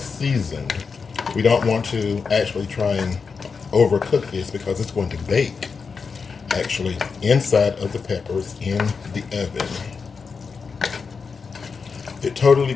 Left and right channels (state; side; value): quieter; right; 5.3 dB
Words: We don't want to actually try and overcook this because it's going to bake actually inside of the peppers in the oven. It totally